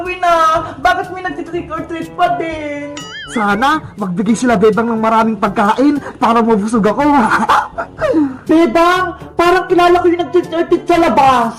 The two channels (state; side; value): identical; both; correlation 1.00